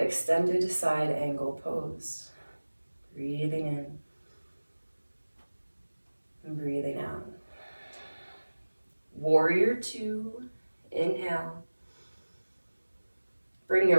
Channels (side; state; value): both; inverted; correlation -1.00